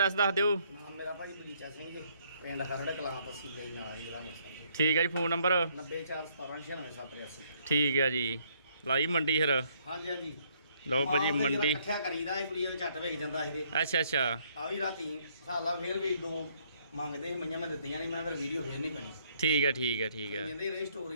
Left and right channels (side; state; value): both; inverted; correlation -0.68